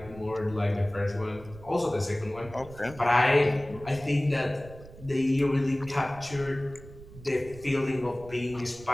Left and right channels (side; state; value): right; noise; rumble, 18 dB below the sound